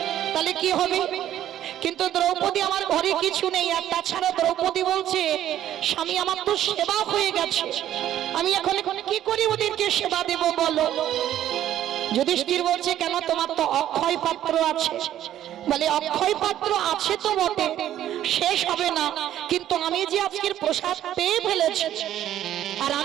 তাহলে কি হবে? কিন্তু দ্রৌপদী আমার ঘরে কিছু নেই। আর তাছাড়া দ্রৌপদী বলছে স্বামী আমার তো সেবা হয়ে গেছে, আমি এখন কি করি ওদেরকে সেবা দেব বলো? যুধিষ্ঠির বলছে কেন? তোমার তো অক্ষয় পাত্র আছে। বলে অক্ষয় পাত্র আছে তো বটে, শেষ হবে না, কিন্তু আমি যে আজকের প্রসাদ পেয়ে ফেলেছি, আর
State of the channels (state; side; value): quieter; left; 11.9 dB